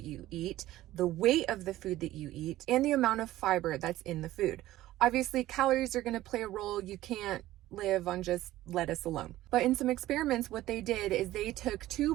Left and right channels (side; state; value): left; quieter; 15.4 dB